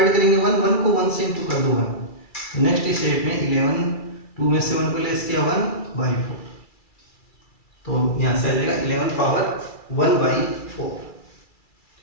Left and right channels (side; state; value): right; late; 2.3 ms